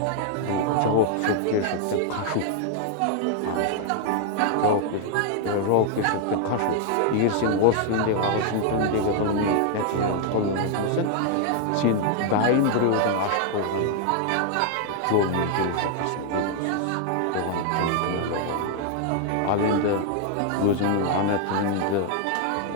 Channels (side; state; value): both; different; correlation 0.00